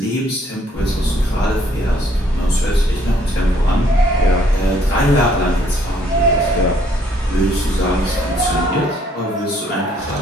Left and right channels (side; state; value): both; normal; correlation 0.65